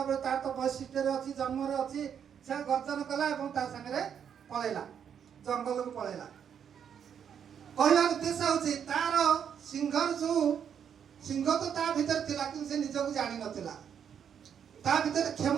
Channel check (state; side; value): quieter; left; 8.1 dB